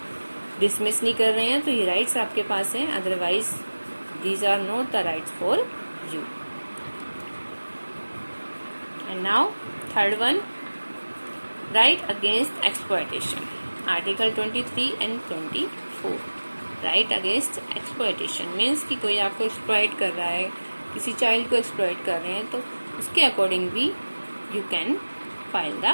डिसमिस नहीं कर रहे हैं, तो ये राइट्स आपके पास हैं. Otherwise these are not the rights for you. And now third one, right against exploitation. Article 23 and 24. Right against exploitation means कि कोई आपको exploit कर रहा है, किसी चाइल्ड को exploit कर रहे हैं, तो उसके अकॉर्डिंग भी you can file the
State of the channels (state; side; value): inverted; both; correlation -1.00